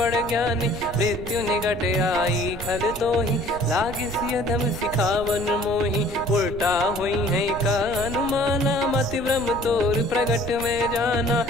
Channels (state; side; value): noise; right; rumble, 12 dB below the sound